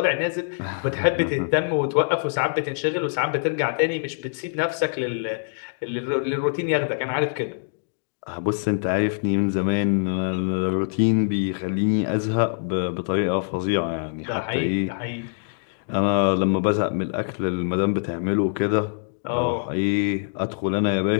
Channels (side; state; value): right; silent; digital silence